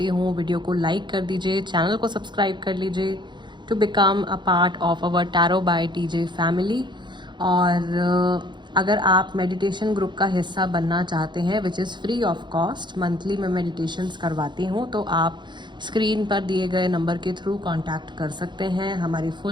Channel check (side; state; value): left; late; 0.22 ms